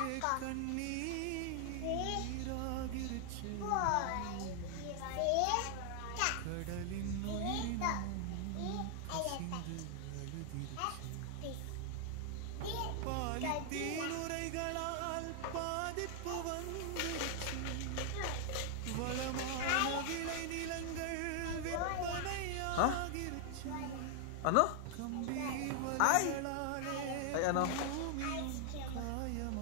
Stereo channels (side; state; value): both; different; correlation 0.00